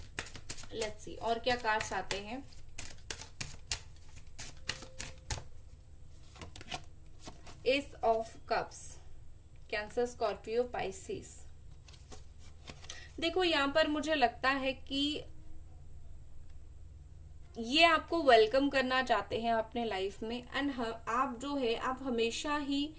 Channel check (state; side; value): identical; both; correlation 1.00